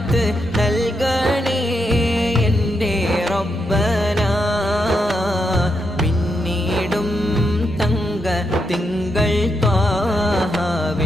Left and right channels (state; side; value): normal; both; correlation 0.82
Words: നൽകണേ എൻ്റെ റബ്ബന പിന്നീടും തങ്ക തിങ്കൾ